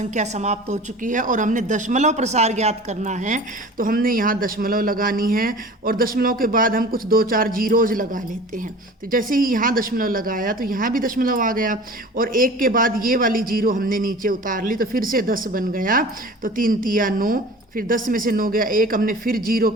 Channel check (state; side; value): normal; both; correlation 0.40